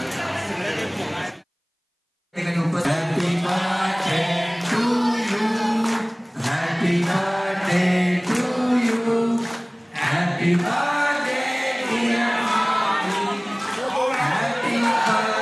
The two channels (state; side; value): identical; both; correlation 1.00